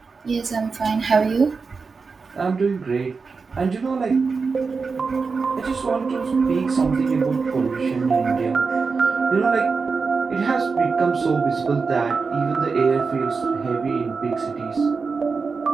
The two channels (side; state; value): left; quieter; 4.7 dB